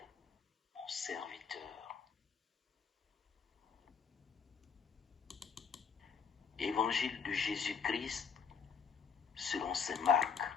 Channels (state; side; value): quieter; right; 6.1 dB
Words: mon serviteur. Évangile de Jésus-Christ selon saint Marc.